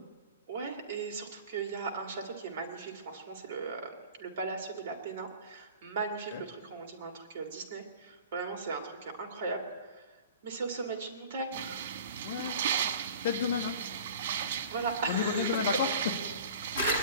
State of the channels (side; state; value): both; inverted; correlation -0.41